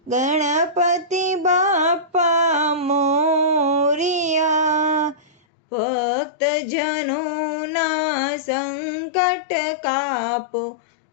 ગણપતિ બાપા મોરિયા. ભક્તજનોના સંકટ કાપો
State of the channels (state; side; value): drops out; right; at 5.3 s